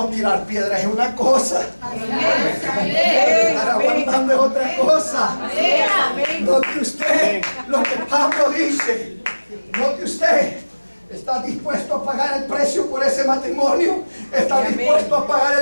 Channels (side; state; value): both; inverted; correlation -1.00